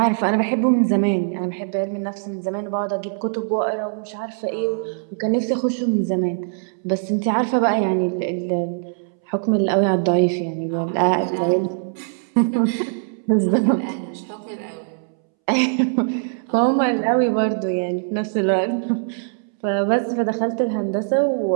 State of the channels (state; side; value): silent; left; 64 dB below the other